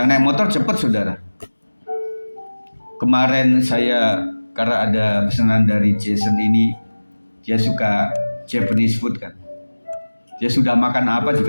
naik motor cepet saudara. Kemarin saya, karena ada pesanan dari Jason ini, dia suka Japanese food kan. Dia sudah makan apa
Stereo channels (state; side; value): inverted; both; correlation -1.00